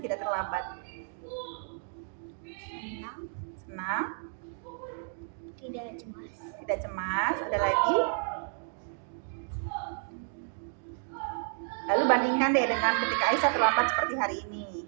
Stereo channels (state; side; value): silent; left; 57 dB below the other